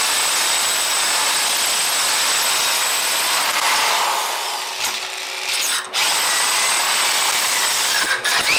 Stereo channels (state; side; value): identical; both; correlation 1.00